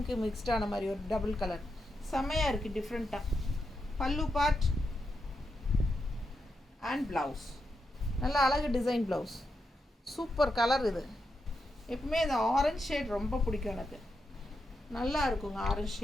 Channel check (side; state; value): both; normal; correlation 0.85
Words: மிக்ஸ்டான மாதிரி ஒரு டபுள் கலர் செமையாக இருக்குது, டிஃப்ரெண்ட்டாக. பல்லு பார்ட் அண்ட் ப்ளவுஸ் நல்ல அழகு டிசைன் ப்ளவுஸ், சூப்பர் கலர். இது எப்பவுமே இந்த ஆரஞ்ச் ஷேட் ரொம்ப பிடிக்கும் எனக்கு, நல்லா இருக்குங்க ஆரஞ்ச்